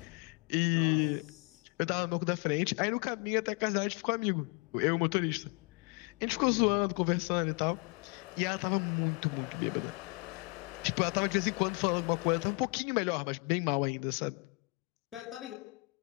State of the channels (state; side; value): quieter; right; 29.7 dB